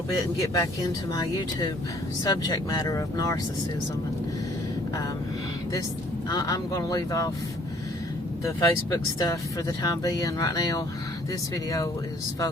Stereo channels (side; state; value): both; normal; correlation 0.59